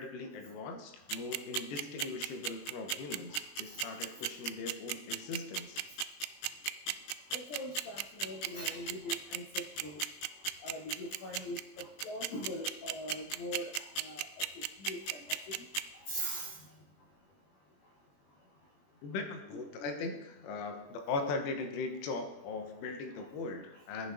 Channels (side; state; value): right; late; 21 ms